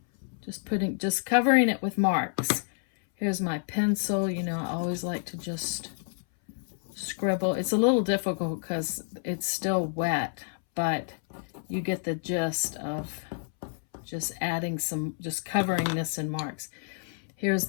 Just covering it with marks. Here's my pencil. You know, I always like to just scribble. It's a little difficult because it's still wet, but you get the gist of just just covering this in marks. Here's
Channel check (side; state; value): right; silent; 59 dB below the other